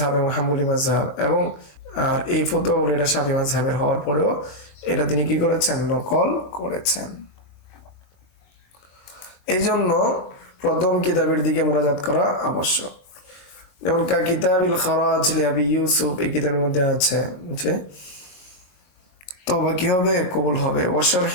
এবং হাম্বলি মাযহাব, এবং আর এই ফতোয়া হলো এটা শাফি মাযহাবের হওয়ার পরেও এটা তিনি কি করেছেন? নকল করেছেন। এই জন্য প্রথম কিতাবের দিকে মুরাজাত করা আবশ্যক। যেমন কিতাবিল খারাজ লিআবি ইউসুফ, এই কিতাবের মধ্যে আছে যে তওবা কি হবে? কবুল হবে। ওয়া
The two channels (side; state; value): right; late; 22 ms